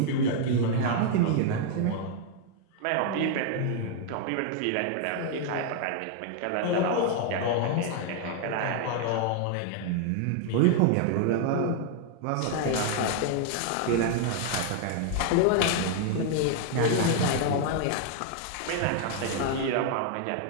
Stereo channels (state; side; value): different; both; correlation 0.00